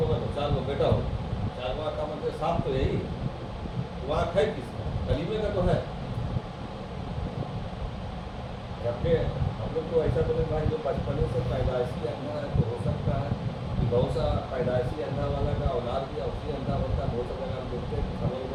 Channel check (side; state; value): both; identical; correlation 1.00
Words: تو 4 بیٹا ہو. 4 کا مطلب 7 تو یہی آنکھ ہے کس کا, کلیمے کا تو ہے. جبکہ ہم لوگ کو ایسا بولے بھائی جو بچپنے سے پیدائشی اندھا ہے تو ہو سکتا ہے کہ بہت سا پیدائشی اندھا والا کا اولاد بھی اسی اندھا ہوتا ہے. بہت سا جگہ ہم دیکھتے ہیں خبر